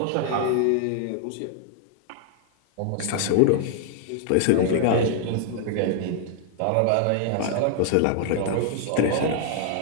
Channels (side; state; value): both; different; correlation -0.01